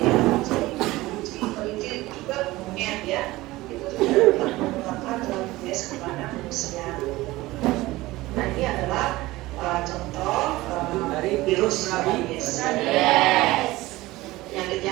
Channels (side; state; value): left; quieter; 18.8 dB